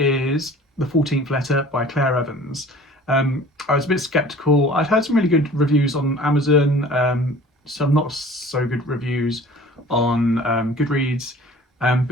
The 14th Letter by Claire Evans. I was a bit sceptical. I'd heard some really good reviews on Amazon, some not so good reviews on Goodreads,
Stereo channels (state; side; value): normal; both; correlation 0.47